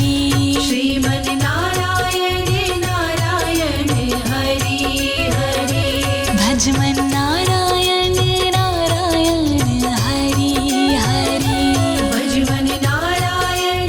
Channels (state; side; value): identical; both; correlation 1.00